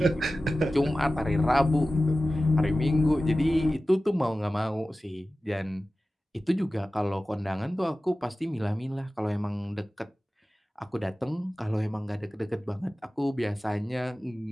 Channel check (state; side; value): normal; both; correlation 0.95